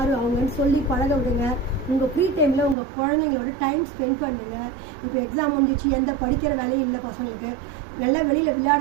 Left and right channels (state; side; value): drops out; left; at 2.8 s